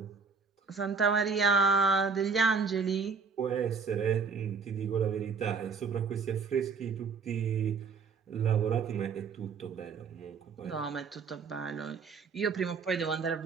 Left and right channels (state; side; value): quieter; left; 5.4 dB